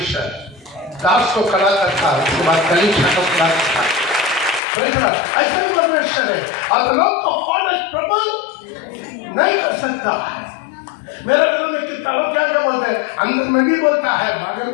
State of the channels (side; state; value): right; drops out; at 4.6 s